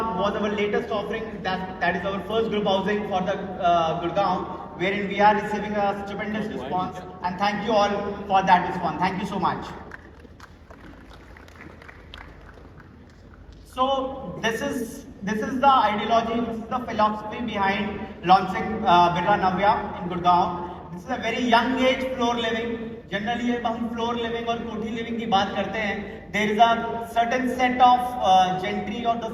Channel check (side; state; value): both; identical; correlation 1.00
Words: was our latest offering. That is our first group housing for the Gurgaon, wherein we are receiving a stupendous response, and thank you all for that response. Thank you so much. So this is the ideology, this is the philosophy behind launching Birla Navya in Gurgaon. This is a very young age floor living. Generally जब हम floor living और कोठी living की बात करते हैं, there is a certain set of gentry or the